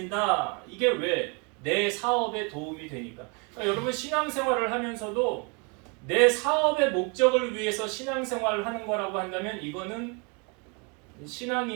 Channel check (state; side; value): quieter; left; 33.1 dB